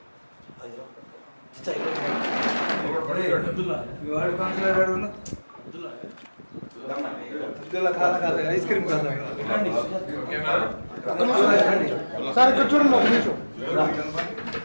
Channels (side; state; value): both; inverted; correlation -1.00